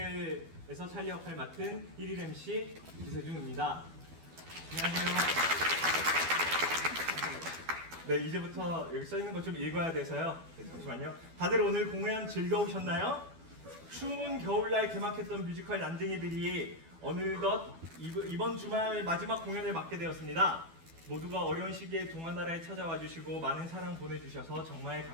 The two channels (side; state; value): left; late; 12 ms